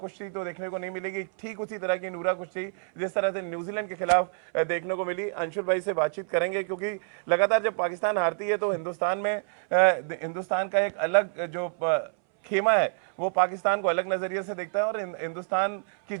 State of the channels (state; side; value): silent; left; 60 dB below the other